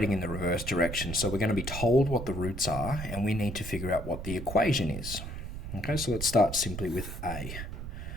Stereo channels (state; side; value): noise; right; rumble, 7 dB below the sound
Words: in the reverse direction. So we're going to be told what the roots are, and we need to figure out what the equation is. Okay, so let's start simply with A.